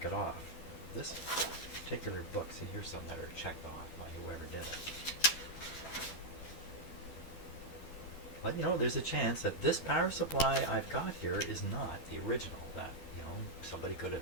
it off. This particular book, see, here's some that are checked off by whoever did it. But you know, there's a chance that this power supply I've got here is not the original. That, you know, somebody could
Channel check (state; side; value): late; right; 12 ms